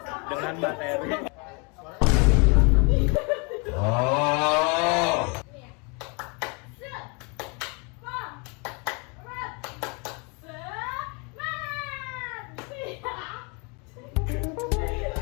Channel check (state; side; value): quieter; right; 32.4 dB